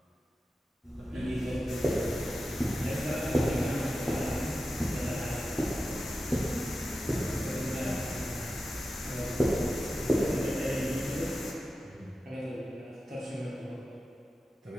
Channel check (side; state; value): both; normal; correlation 0.92